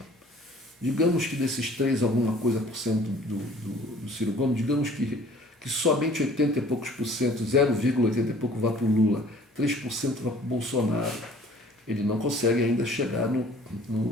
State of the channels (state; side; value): normal; both; correlation 0.52